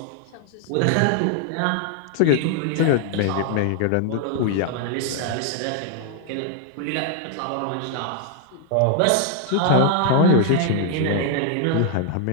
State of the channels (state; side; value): different; both; correlation 0.00